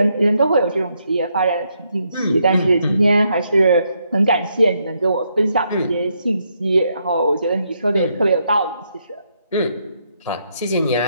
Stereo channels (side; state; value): both; inverted; correlation -0.77